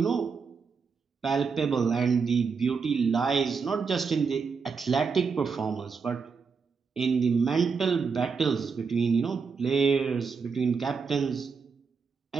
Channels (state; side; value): quieter; left; 5.4 dB